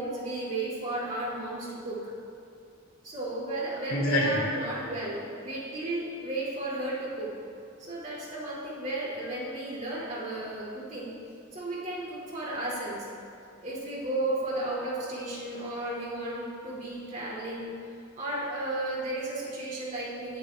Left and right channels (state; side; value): normal; both; correlation 0.10